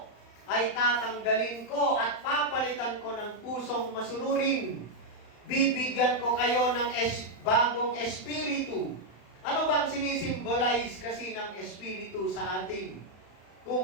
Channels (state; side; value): late; right; 35 ms